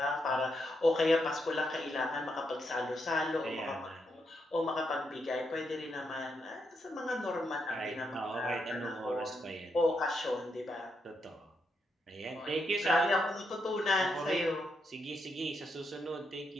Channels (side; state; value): both; normal; correlation 0.81